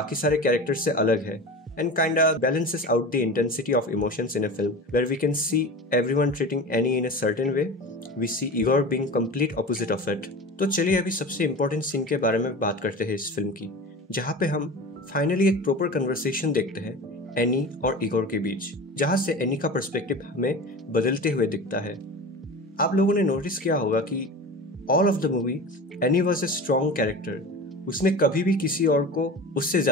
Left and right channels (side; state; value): both; normal; correlation 0.32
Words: सारे characters से अलग है and kinda balances out the intensity of emotions in a film where we can see everyone treating Annie in a certain way. We see Igor being complete opposite of it. तो चलिए अभी सबसे important scene के बारे में बात करते हैं इस फिल्म की, जहाँ पे हम फाइनली एक प्रॉपर कन्वर्सेशन देखते हैं एनी और इगोर के बीच, जहाँ से एनी का पर्सपेक्टिव हमें बदलते हुए दिखता है। आप लोगों ने नोटिस किया होगा कि all of the movie any was a strong character. उसने कभी भी किसी और को उससे